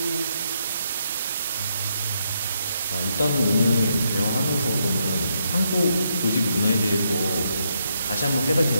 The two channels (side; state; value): both; inverted; correlation -0.78